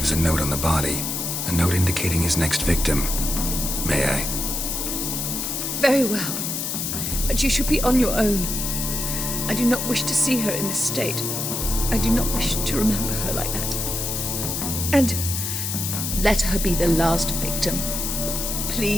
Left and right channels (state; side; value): noise; left; hiss, 2 dB below the sound